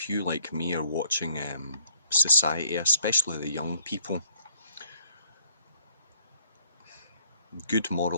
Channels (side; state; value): both; inverted; correlation -0.64